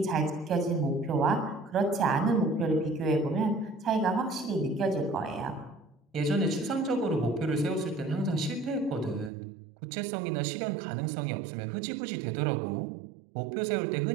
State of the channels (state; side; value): drops out; left; at 9.3 s